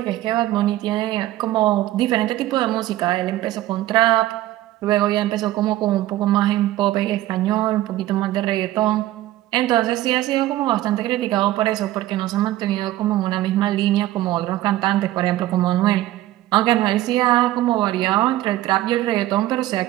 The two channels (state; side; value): quieter; left; 15.2 dB